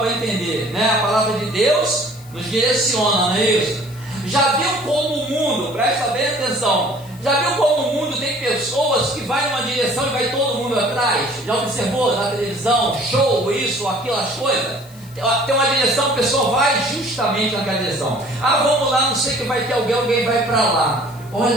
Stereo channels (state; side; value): noise; left; hiss, 24 dB below the sound